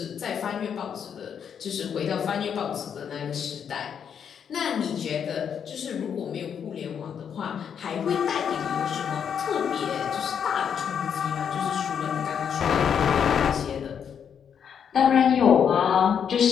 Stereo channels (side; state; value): right; quieter; 7.8 dB